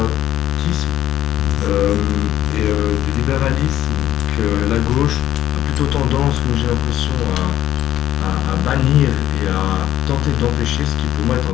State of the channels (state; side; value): quieter; right; 12.5 dB